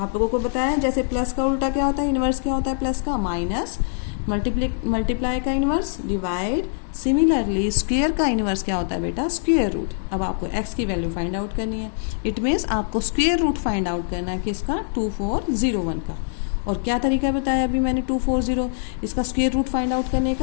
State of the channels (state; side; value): silent; right; 63 dB below the other